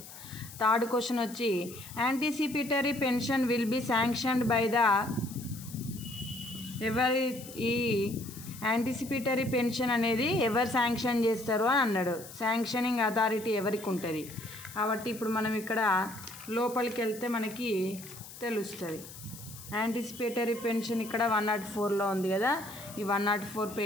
థర్డ్ క్వశ్చన్ వచ్చి, anticipatory pension will B sanctioned by the. ఎవరి ఈ యాంటిసిపేటరీ పెన్షన్ అనేది ఎవరు శాంక్షన్ చేస్తారు అని అన్నాడు. శాంక్షనింగ్ అథారిటీ ఎవరికి ఉంటుంది? కాబట్టి ఇప్పుడు మనం ఇక్కడ లోపలికి వెళ్తే మనకి తెలుస్తుంది. యాంటిసిపేటరీ పెన్షన్ ఇక్కడ 104లో ఉంది కదా. ఈ 104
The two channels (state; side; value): noise; left; hiss, 15 dB below the sound